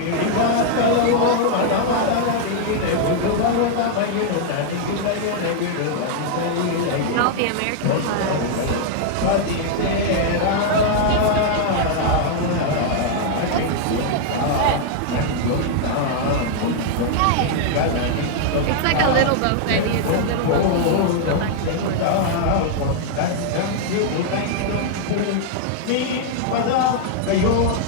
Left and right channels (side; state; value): both; different; correlation -0.01